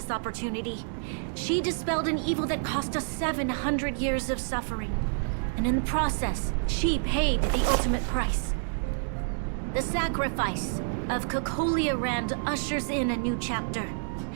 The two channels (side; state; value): left; silent; digital silence